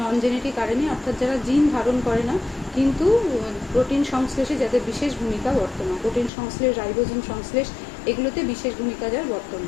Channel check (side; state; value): right; drops out; at 6.3 s